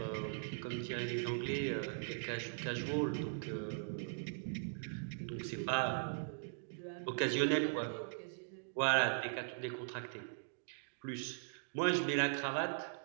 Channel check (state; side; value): silent; left; digital silence